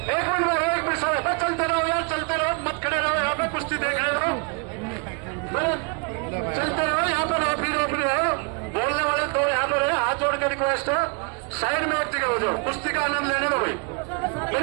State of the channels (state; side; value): quieter; left; 34.2 dB